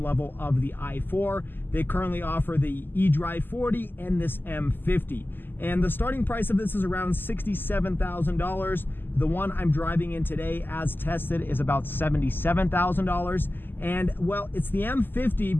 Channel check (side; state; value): right; late; 0.094 ms